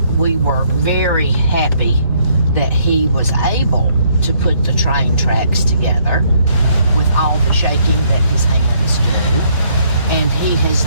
we were very happy that he was able to put the train tracks together with all the shaking that his hands do. And he has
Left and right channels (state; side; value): inverted; both; correlation -0.68